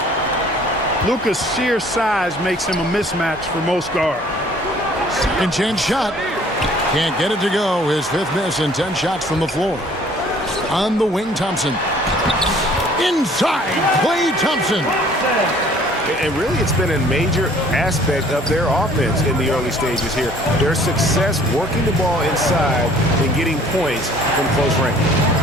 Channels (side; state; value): both; normal; correlation 0.55